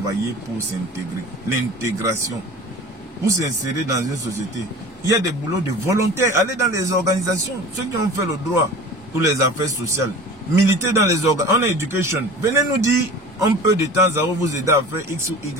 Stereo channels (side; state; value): both; normal; correlation 0.39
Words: pour s'intégrer. L'intégration. Pour s'insérer dans une société. Il y a des boulots de volontaires. Allez dans les organisations. Ceux qui ont fait le droit ou les affaires sociales. Militez dans les organisations. On a éducation. Venez nous dire, on peut de temps à autre vous aider à faire X ou